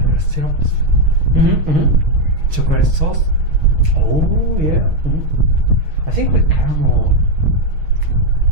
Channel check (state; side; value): late; left; 6.4 ms